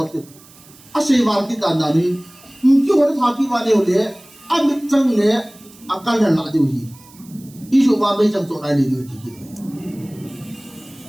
的，啊谁玩的单单的，就我的他去玩的了，啊没挣了，啊干了哪丢去，一说话没挣做来的就提起来。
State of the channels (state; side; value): noise; right; hiss, 24 dB below the sound